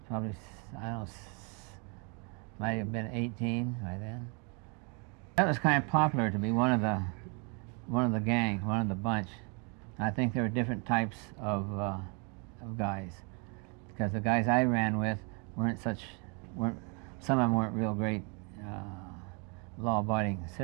probably, I don't know, might have been 18 by then. That was kind of popular to be one of the gang, one of the bunch. I think there were different types of guys, because the guys I ran with weren't some of them weren't real great law-abiding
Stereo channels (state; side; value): quieter; left; 35.1 dB